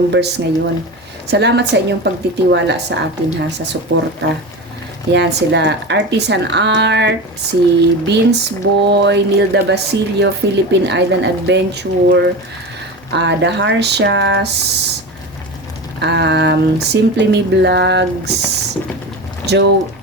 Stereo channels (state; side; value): normal; both; correlation 0.26